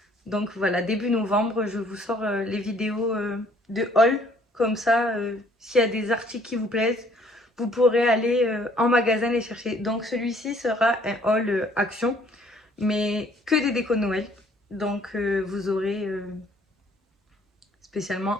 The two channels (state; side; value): normal; both; correlation 0.60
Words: Donc voilà, début novembre, je vous sors les vidéos de haul. Comme ça, s'il y a des articles qui vous plaisent, vous pourrez aller en magasin les chercher. Donc celui-ci sera un haul action, mais que des décos de Noël. Donc vous aurez spécialement